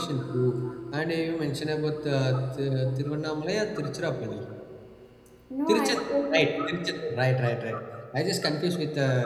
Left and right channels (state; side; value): identical; both; correlation 1.00